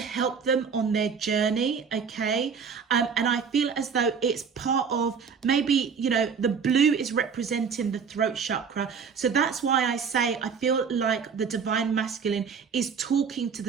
them on their journey, okay? And I feel as though it's part of, maybe, you know, the blue is representing the throat chakra. So that's why I say I feel like the divine masculine is talking to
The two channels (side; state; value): left; quieter; 6.2 dB